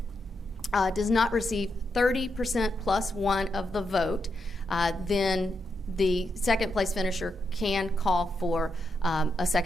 does not receive 30% plus one of the vote, then the second place finisher can call for a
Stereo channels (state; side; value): normal; both; correlation 0.83